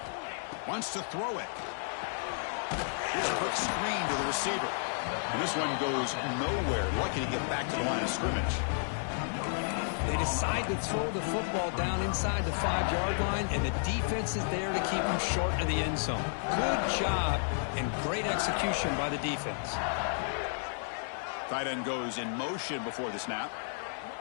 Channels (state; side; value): silent; right; digital silence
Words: Wants to throw it. Here's a quick screen to the receiver. And this one goes nowhere. Lucky to get back to the line of scrimmage. They decide to throw the football down inside the 5-yard line, and the defense is there to keep them short of the end zone. Good job and great execution by the defense. Tight end goes in motion before the snap.